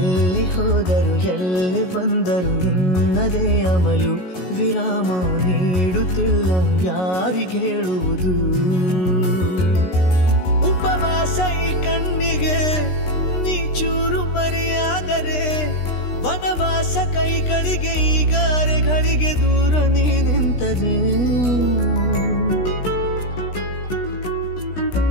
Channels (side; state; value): right; late; 16 ms